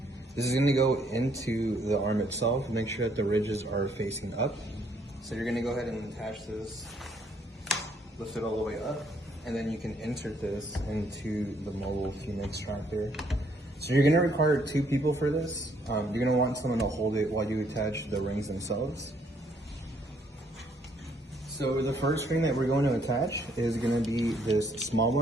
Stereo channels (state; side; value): normal; both; correlation 0.68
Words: This is going to go into the arm itself. Make sure that the ridges are facing up. So you're going to go ahead and attach this, lift it all the way up, and then you can insert this into the mobile fume extractor. So you're going to require 2 people for this. You're going to want someone to hold it while you attach the rings themselves. So the first ring that we're going to attach is going to be this small